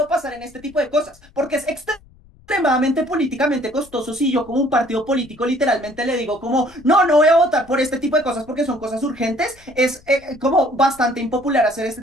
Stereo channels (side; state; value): left; noise; rumble, 27 dB below the sound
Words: pasar en este tipo de cosas, porque es extremadamente políticamente costoso si yo como un partido político literalmente le digo como, no voy a votar por este tipo de cosas porque son cosas urgentes, es como bastante impopular hacer